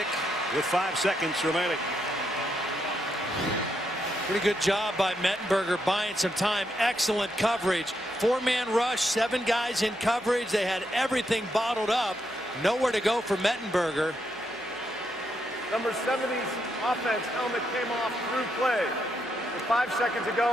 with 5 seconds remaining. Pretty good job by Mettenberger buying some time. Excellent coverage. 4-man rush, 7 guys in coverage. They had everything bottled up. Nowhere to go for Mettenberger. Number 70's offense helmet came off through play. With 5 seconds to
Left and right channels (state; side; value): normal; both; correlation 0.80